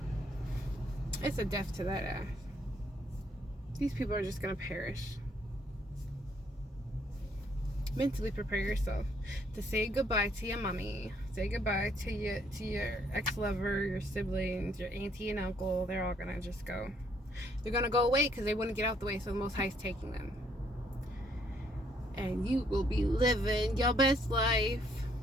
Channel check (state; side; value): normal; both; correlation 0.68